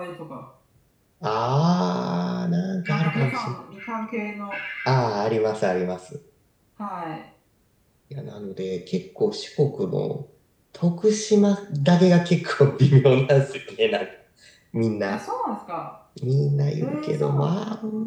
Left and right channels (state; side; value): identical; both; correlation 1.00